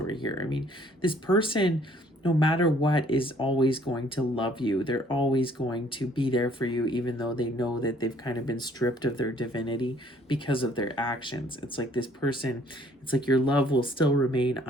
here. I mean, this person, no matter what, is always going to love you. They're always going to be there for you, even though they know that they've kind of been stripped of their divinity because of their actions. It's like this person, it's like your love will still remain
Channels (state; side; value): normal; both; correlation 0.60